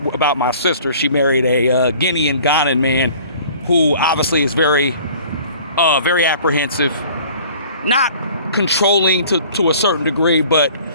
about my sister, she married a Guinean Ghanaian man who obviously is very apprehensive, not controlling to a certain degree, but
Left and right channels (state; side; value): inverted; both; correlation -0.50